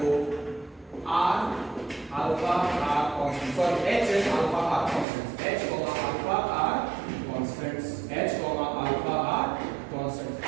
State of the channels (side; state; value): left; drops out; at 5.1 s